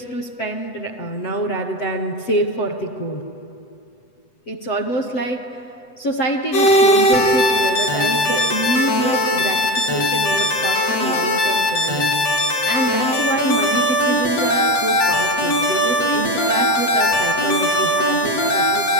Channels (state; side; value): late; right; 8.0 ms